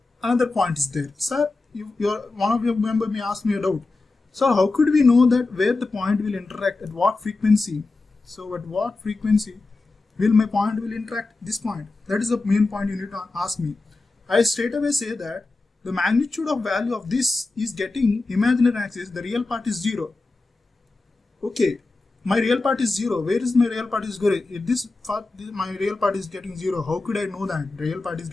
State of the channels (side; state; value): right; quieter; 3.5 dB